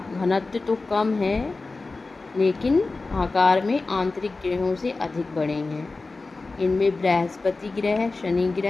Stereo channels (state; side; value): quieter; right; 3.6 dB